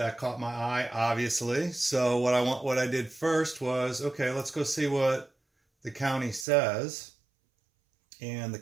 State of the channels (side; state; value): left; drops out; at 6.5 s